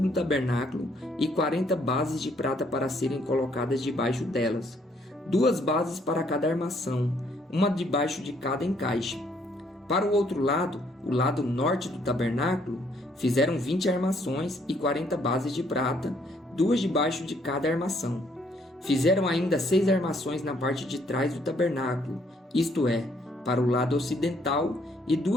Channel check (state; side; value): normal; both; correlation 0.67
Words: do tabernáculo e 40 bases de prata para serem colocadas debaixo delas, 2 bases para cada armação, uma debaixo de cada encaixe. Para o outro lado, o lado norte do tabernáculo, fizeram 20 armações e 40 bases de prata, 2 debaixo de cada armação. Fizeram ainda 6 armações na parte de trás do tabernáculo, isto é, para o lado ocidental, e